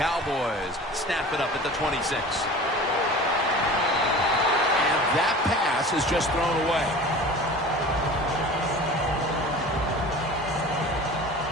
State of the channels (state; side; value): normal; both; correlation 0.39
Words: snap it up at the 26. And that pass is just thrown away.